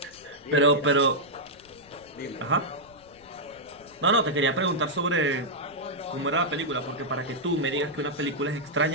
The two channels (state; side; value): noise; left; rumble, 27 dB below the sound